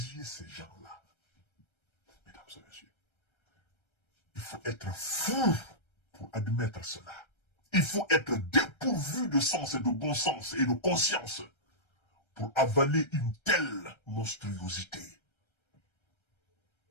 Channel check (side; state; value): right; late; 1.3 ms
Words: ces gens-là. Mesdames et messieurs, il faut être fou pour admettre cela. Il faut être dépourvu de sens et de bon sens et de conscience pour avaler une telle monstruosité.